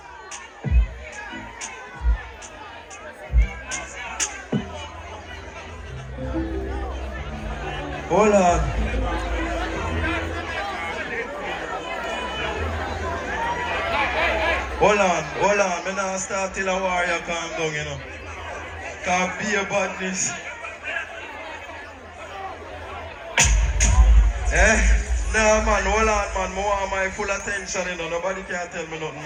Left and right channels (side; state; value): both; identical; correlation 1.00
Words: Hold on. Me not start till a warrior calm down, you know. Can't be a badness. Nah, man, hold on, man. I want my full attention, you know. Nobody can tell me nothing.